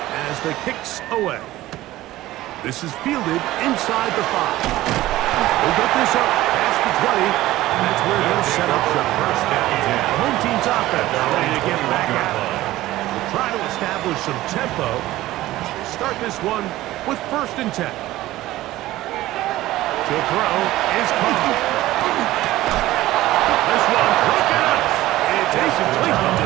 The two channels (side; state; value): left; quieter; 16.2 dB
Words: as the kicks away. This is fielded inside the 5. They'll get this up past the 20, and that's where they'll set up shop. The home team's offense ready to get back at it. We'll try to establish some tempo as we start this one with 1st and 10. To throw is caught. This one broken up. It's Jason Cleveland